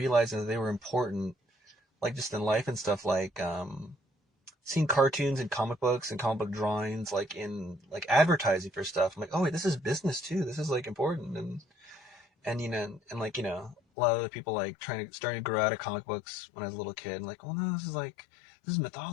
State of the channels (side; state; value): right; drops out; at 13.8 s